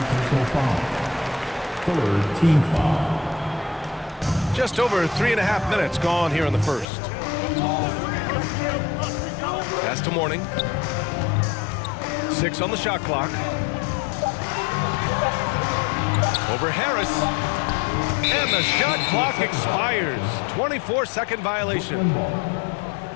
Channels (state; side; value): drops out; right; at 6.9 s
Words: personal foul. Third team foul. Just over 3.5 minutes gone here in the first. Pass to Mourning. 6 on the shot clock. Over Harris. And the shot clock expires. 24-second violation.